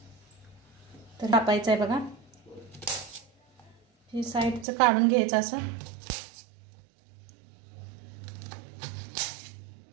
तर कापायचं आहे बघा, हे साईडचं काढून घ्यायचं असं।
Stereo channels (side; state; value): left; drops out; at 4.7 s